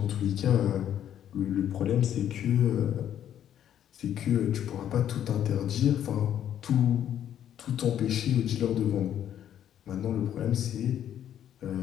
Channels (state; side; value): quieter; right; 10.3 dB